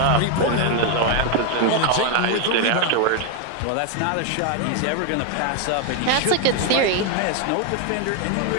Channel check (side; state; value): both; different; correlation 0.01